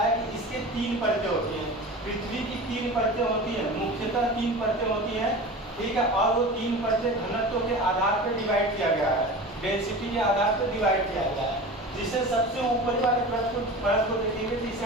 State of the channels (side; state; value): both; normal; correlation 0.34